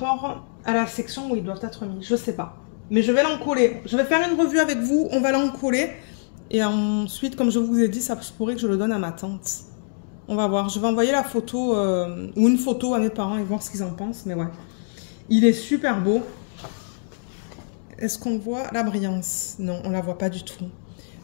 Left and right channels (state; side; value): silent; right; digital silence